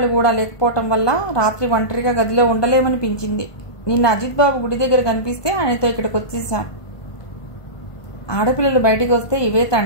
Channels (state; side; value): late; right; 1.2 ms